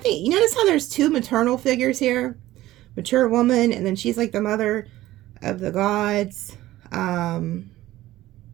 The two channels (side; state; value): left; quieter; 15.8 dB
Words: you notice how there's two maternal figures here? Mature woman, and then she's like the mother of the gods.